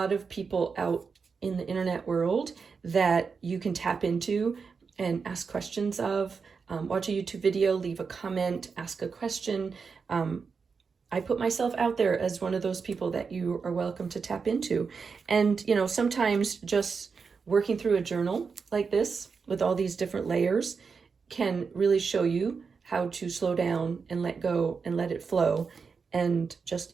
of people out in the internet world that you can tap into and ask questions of. Watch a YouTube video, leave a comment, ask a question. I put myself out there as one of those people that you are welcome to tap into. And, you know, sometimes just working through a journal like this with all these different layers can really show you how to slow down and let go and let it flow and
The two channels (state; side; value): quieter; left; 5.4 dB